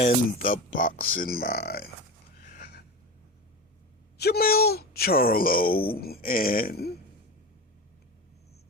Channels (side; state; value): both; normal; correlation 0.26